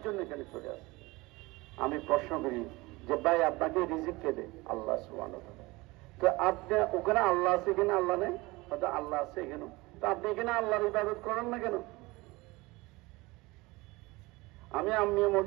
জন্য এখানে চলে আসছে। আমি প্রশ্ন করি যে ভাই আপনাকে রিজিক কে দেয়? আল্লাহ সুবহানাহু ওয়া তাআলা। তো আপনি ওখানে আল্লাহ আছে, এখানে আল্লাহ নেই? হয়তো আল্লাহ আছে এখানে, তো আপনি এখানে আল্লাহর ইবাদত করেন না কেন? আমি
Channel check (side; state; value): left; quieter; 22.3 dB